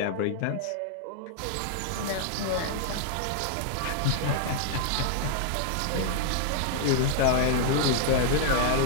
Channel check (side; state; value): both; different; correlation -0.01